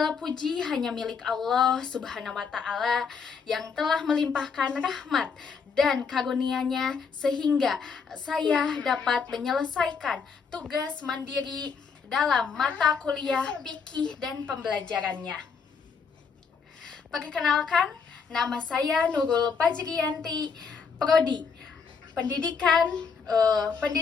puji hanya milik Allah Subhanahu wa Ta'ala yang telah melimpahkan rahmat dan karunia-Nya sehingga saya dapat menyelesaikan tugas mandiri dalam mata kuliah fikih dan pembelajarannya. Perkenalkan, nama saya Nurul Fajriyanti, Prodi Pendidikan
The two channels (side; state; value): right; quieter; 5.7 dB